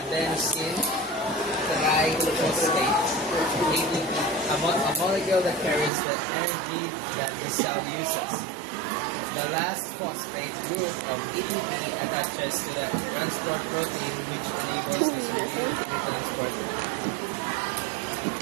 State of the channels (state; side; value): drops out; left; at 5.9 s